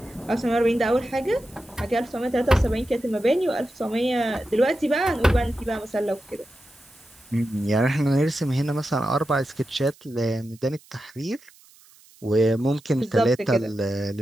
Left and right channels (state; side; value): noise; right; hiss, 27 dB below the sound